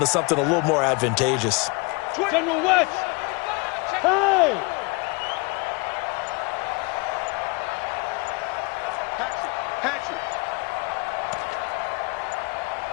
something a little more advantageous. General West. Hey!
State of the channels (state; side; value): quieter; right; 28.2 dB